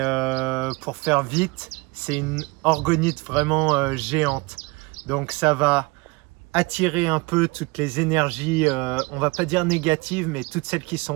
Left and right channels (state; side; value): quieter; left; 25.7 dB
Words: pour faire vite, c'est une orgonite vraiment géante. Donc, ça va attirer un peu toutes les énergies, on va pas dire négatives, mais toutes celles qui